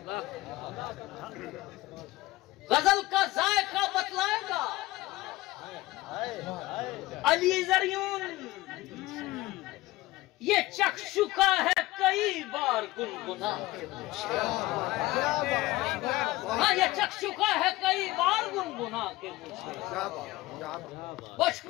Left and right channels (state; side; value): quieter; right; 18.6 dB